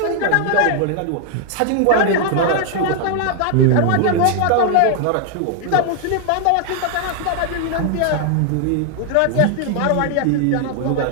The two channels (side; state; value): both; different; correlation 0.00